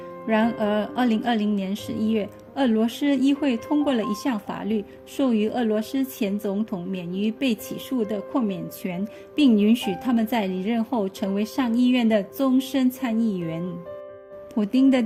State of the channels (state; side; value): identical; both; correlation 1.00